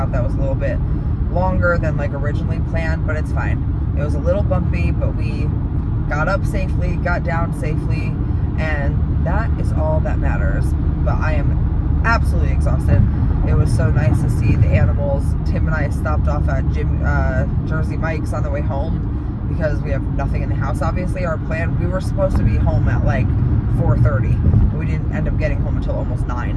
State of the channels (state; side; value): identical; both; correlation 1.00